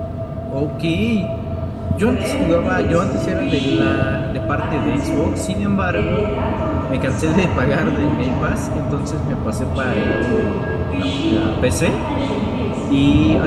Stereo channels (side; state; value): both; identical; correlation 1.00